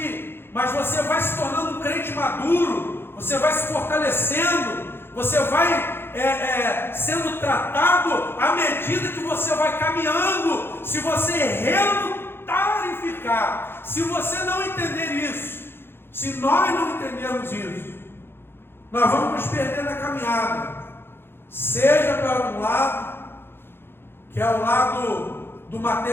mas você vai se tornando um crente maduro, você vai se fortalecendo, você vai sendo tratado à medida que você vai caminhando. Se você relutar em ficar, se você não entender isso, se nós não entendermos isso, nós vamos nos perder na caminhada, seja para um lado, que é o lado do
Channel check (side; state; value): right; late; 0.11 ms